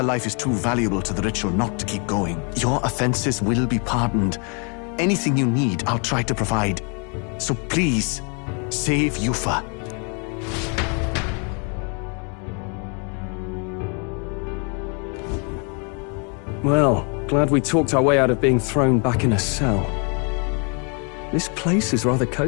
life is too valuable to the ritual not to keep going. Your offenses will be pardoned. Anything you need, I'll try to provide. So please, save Yufa. Well, glad we talked our way out of being thrown back in a cell. This place is rather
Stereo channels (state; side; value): quieter; right; 36.6 dB